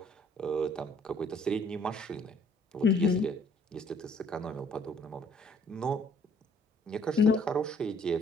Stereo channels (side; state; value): both; normal; correlation 0.61